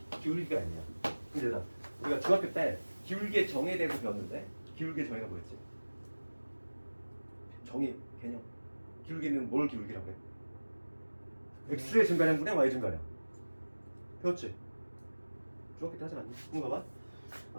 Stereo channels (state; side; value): inverted; both; correlation -1.00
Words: 기울기가 m이야. 근데 우리가 중학교 때 기울기의 정의에 대해서 배웠는데 기울기의 정의가 뭐였지? 정의, 개념. 기울기는 뭘 기울기라고 해? x의 증가량분의 y 증가량. 배웠지? 중학교 때 하지 않니? 한번